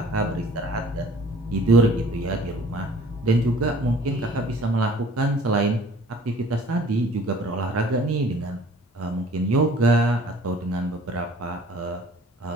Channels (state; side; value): normal; both; correlation 0.51